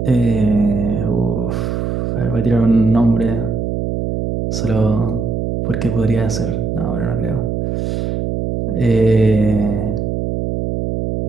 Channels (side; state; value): right; noise; hum, 2 dB below the sound